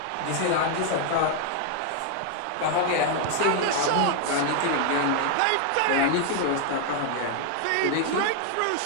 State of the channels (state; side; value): different; both; correlation 0.00